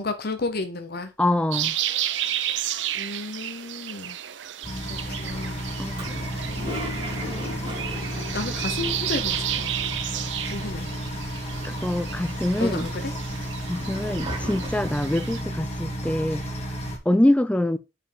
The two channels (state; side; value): normal; both; correlation 0.65